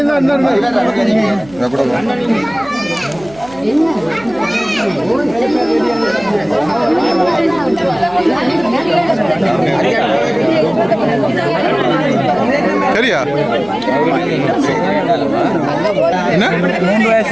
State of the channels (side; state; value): right; noise; hum, 21 dB below the sound